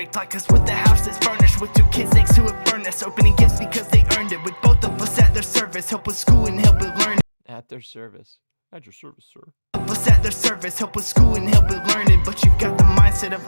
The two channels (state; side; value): inverted; both; correlation -1.00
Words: Like us with the house that's furnished with 2 kids next to a furnace, opening gifts because they earned it, with both of us at their service, help with school and help with learning. At their service. At your service, sir. Help us at their service, help with school and help with learning, but you've got the mindset of